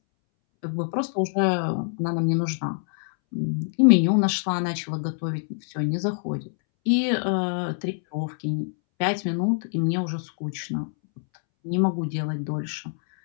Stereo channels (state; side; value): silent; right; 62 dB below the other